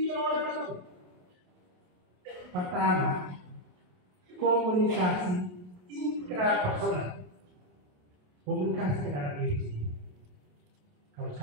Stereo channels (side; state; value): left; late; 27 ms